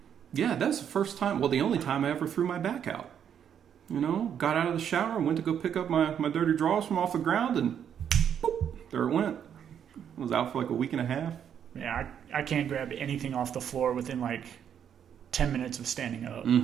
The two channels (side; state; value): left; quieter; 8.7 dB